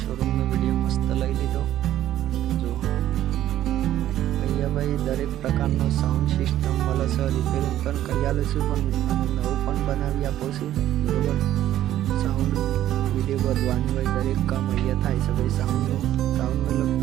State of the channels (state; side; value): quieter; left; 12.6 dB